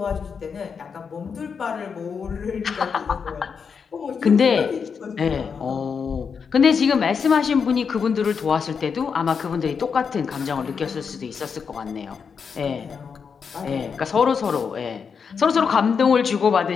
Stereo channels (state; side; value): quieter; right; 6.1 dB